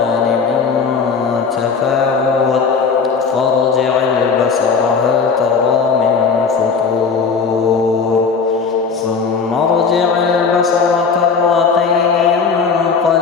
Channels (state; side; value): quieter; right; 5.4 dB